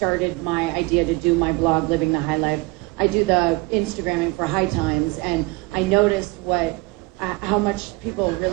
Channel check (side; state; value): left; quieter; 24.5 dB